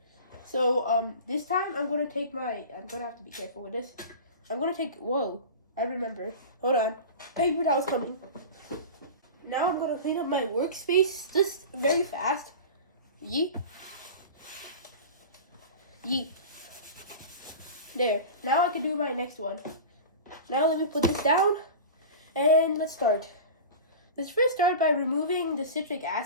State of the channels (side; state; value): both; inverted; correlation -0.32